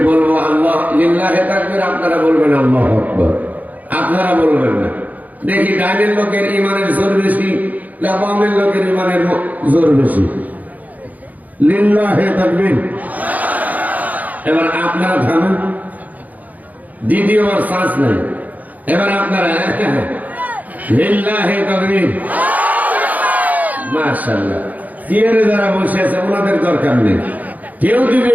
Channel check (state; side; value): late; left; 0.078 ms